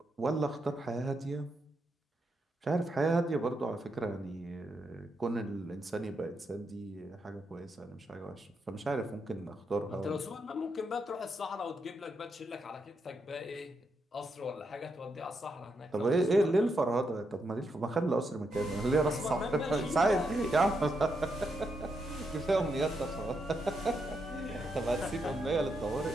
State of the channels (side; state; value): both; normal; correlation 0.81